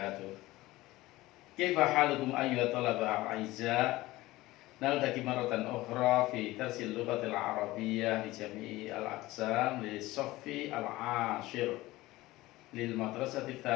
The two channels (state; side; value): quieter; right; 18.4 dB